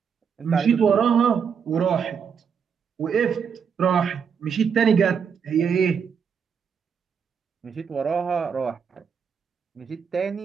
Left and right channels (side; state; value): left; quieter; 6.8 dB